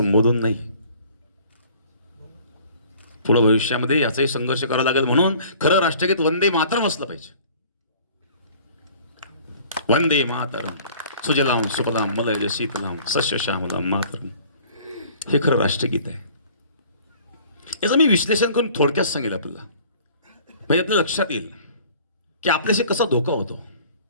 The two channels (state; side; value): inverted; both; correlation -0.51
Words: नाही. पुढे भविष्यामध्ये याचाही संघर्ष करावा लागेल. म्हणून खरं राष्ट्रगीत वंदे मातरम असलं पाहिजे. वंदे मातरम सुजलाम सुफलाम मलयज शीतलाम सस्य श्यामलाम मातरम, हे खरं राष्ट्रगीत आहे. याचं मी विश्लेषण करून थोडक्यात सांगेल आपल्याला, म्हणजे आपल्या लक्षात येईल की आपल्याशी कसा धोका होतो.